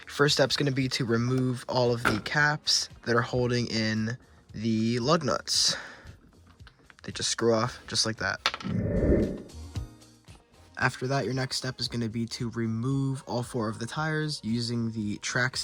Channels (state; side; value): identical; both; correlation 1.00